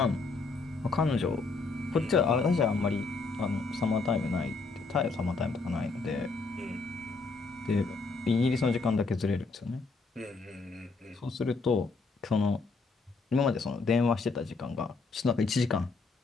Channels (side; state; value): right; quieter; 4.0 dB